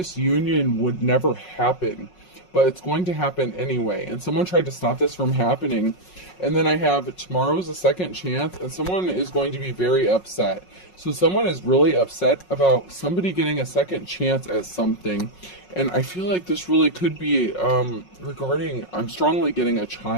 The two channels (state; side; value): late; right; 5.5 ms